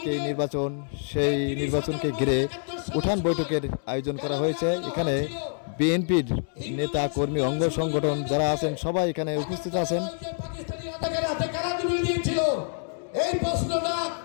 নির্বাচন। সেই নির্বাচনকে ঘিরে উঠান বৈঠকের আয়োজন করা হয়েছে। এখানে বিএনপির নেতা কর্মী অঙ্গ সংগঠন যারা আছেন সবাই এখানে উপস্থিত আছেন। এই প্রশ্নটা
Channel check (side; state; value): right; silent; 60 dB below the other